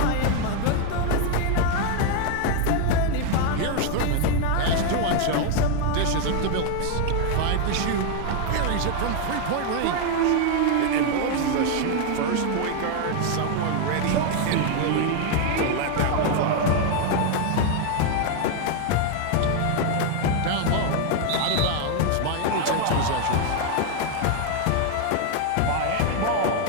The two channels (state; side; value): different; both; correlation 0.01